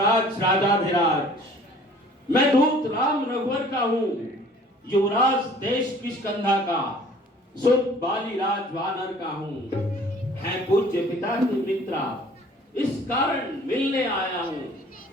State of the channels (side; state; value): both; normal; correlation 0.51